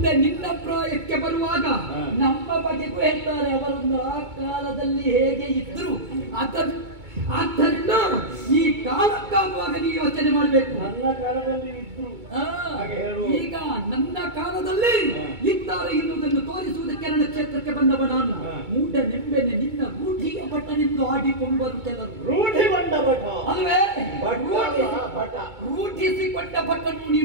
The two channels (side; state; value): left; late; 2.2 ms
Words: ನಿನ್ನ ಪ್ರಾಯಕ್ಕೆ ಬರುವಾಗ ನಮ್ಮ ಬಗೆಗೂ ಹೇಳ್ತಾರೆ ಅವರೊಂದು ಆ ಕಾಲದಲ್ಲಿ ಹೇಗೆ ಇದ್ರು. ಆದ್ದರಿಂದ ಈ ಕಾಲಕ್ಕಾಗುವಾಗ ನೀವು ಯೋಚನೆ ಮಾಡಬೇಕು. ನನ್ನ ಕಾಲದಲ್ಲಿ ಇದ್ರು ಈಗ ನನ್ನ ಕಾಲದಲ್ಲಿ ಇದ್ದಾರೆ ಎನ್ನುವುದನ್ನು ತೋರಿಸುವುದಕ್ಕೆ ನನ್ನ ಕ್ಷೇತ್ರಕ್ಕೆ ಬಂದವ ನಾನು. ಮೂಢ ನೆಂಬೆನೆ ನಿನ್ನ ರೂಢಿಯ ಭಟ್ಟನೆಂದು ಆಡಿಕೊಂಡರು ಕೆಲವರು. ರೂಢಿ ಬಂದ ಭಟ ಅಲ್ವೇ, ರೂಢಿಸಿಕೊಂಡ ಭಟ್ಟನು